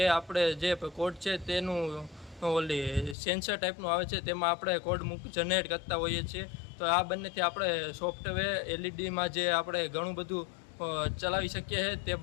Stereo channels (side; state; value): right; drops out; at 3.2 s